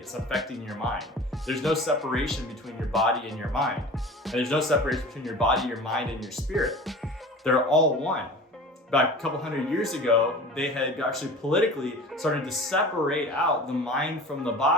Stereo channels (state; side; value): normal; both; correlation 0.38